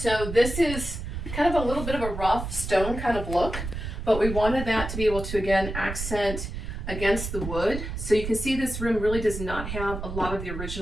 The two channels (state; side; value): noise; right; rumble, 6 dB below the sound